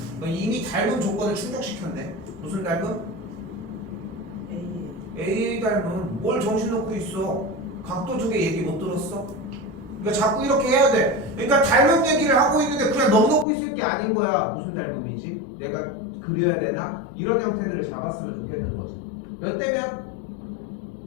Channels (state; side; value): drops out; right; at 13.5 s